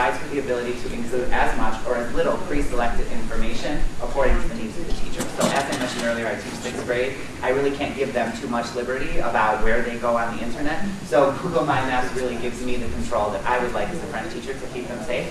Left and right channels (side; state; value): both; identical; correlation 1.00